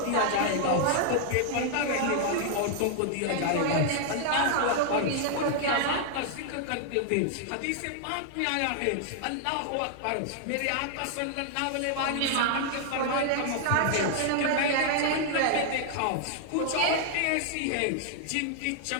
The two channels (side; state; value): both; different; correlation 0.00